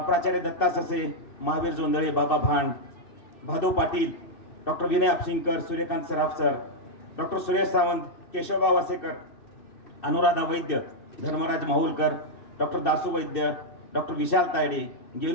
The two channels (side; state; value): right; late; 2.7 ms